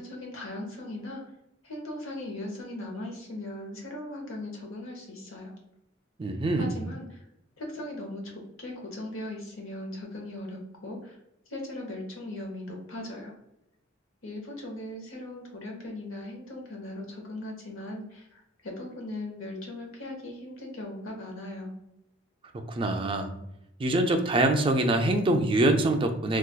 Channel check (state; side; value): normal; both; correlation 0.51